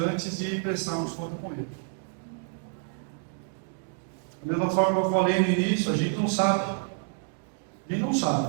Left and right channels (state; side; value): silent; left; 59 dB below the other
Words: de prestarmos conta com Ele. Da mesma forma que eu falei no início, a gente não sabe. A gente não